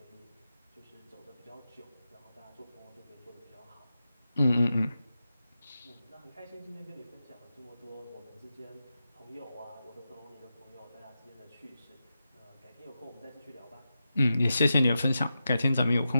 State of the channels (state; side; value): inverted; both; correlation -0.90